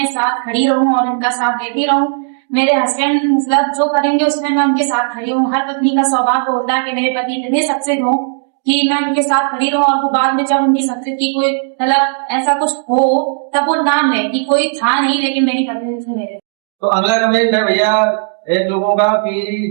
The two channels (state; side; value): silent; left; digital silence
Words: साथ खड़ी रहूं और इनका साथ देती रहूं। मेरे हस्बैंड मतलब जो करेंगे उसमें मैं उनके साथ खड़ी हूँ। हर पत्नी का स्वभाव होता है कि मेरे पति इतने सक्सेस हो कि मैं उनके साथ खड़ी रहूं, और बाद में जब उनकी सक्सेस की कोई मतलब ऐसा कुछ हो तब वो नाम ले कि कोई था नहीं लेकिन मेरी पत्नी थी। तो अगला कमेंट है भैया एक लोगों का कि